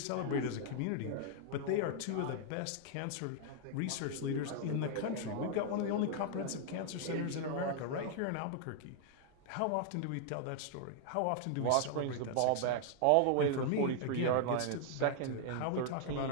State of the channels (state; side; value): different; both; correlation 0.00